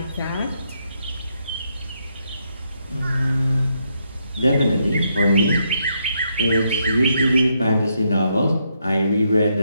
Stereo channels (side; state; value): both; inverted; correlation -0.77